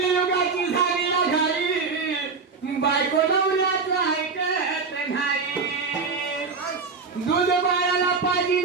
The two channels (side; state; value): left; quieter; 4.8 dB